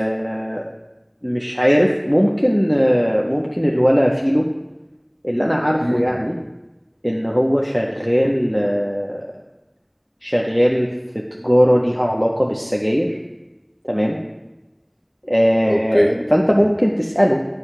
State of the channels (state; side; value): identical; both; correlation 1.00